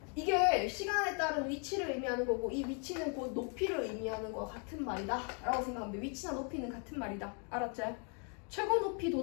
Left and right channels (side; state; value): right; quieter; 38.4 dB